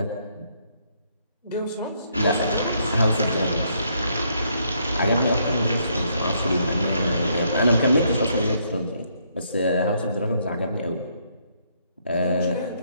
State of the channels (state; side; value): inverted; both; correlation -0.72